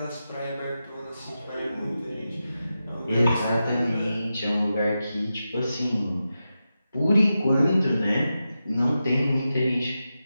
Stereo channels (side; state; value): both; inverted; correlation -0.91